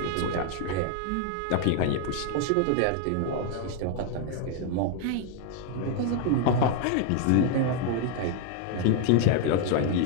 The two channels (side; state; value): both; different; correlation 0.00